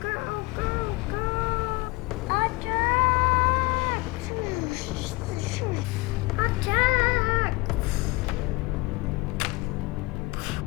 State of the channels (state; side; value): quieter; right; 23.2 dB